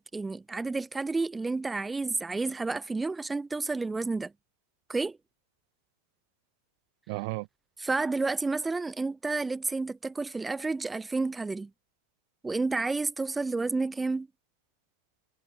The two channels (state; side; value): quieter; left; 3.3 dB